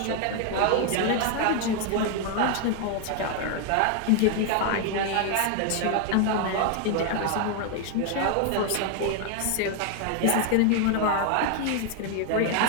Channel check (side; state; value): both; different; correlation 0.01